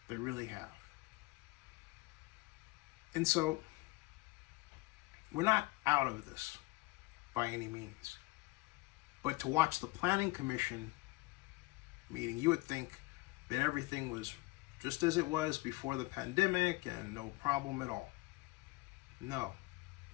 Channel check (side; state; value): right; quieter; 22.5 dB